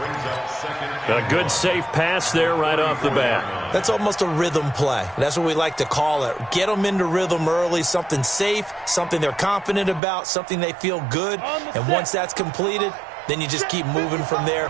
A good safe pass there right off the bat. That's almost a rhythm play. That's what we like to call it. Get them into rhythm early, something safe, something they're confident about, something they feel good. And once that's completed, then you just keep moving from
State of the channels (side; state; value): left; drops out; at 10.0 s